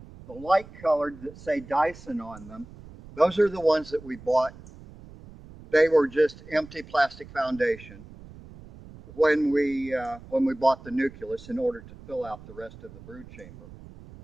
the light colored that say Dyson on them. Those are the ones that we bought. They were just empty plastic foundation when we bought the nucleus in order to fill out the rest of the brood chamber.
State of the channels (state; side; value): noise; right; rumble, 18 dB below the sound